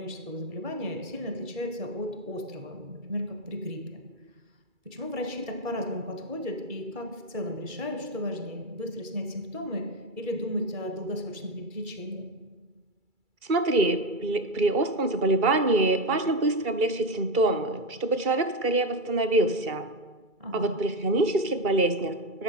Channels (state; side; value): late; left; 2.3 ms